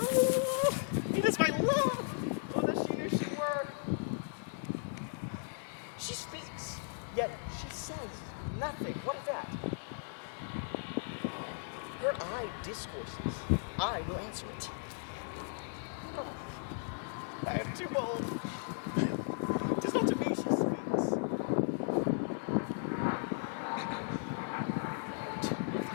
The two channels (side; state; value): right; silent; 54 dB below the other